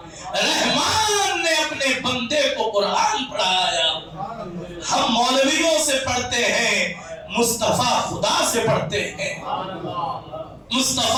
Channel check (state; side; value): identical; both; correlation 1.00